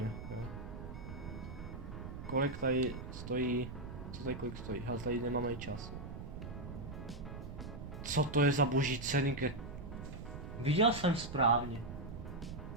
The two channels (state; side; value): noise; right; rumble, 9 dB below the sound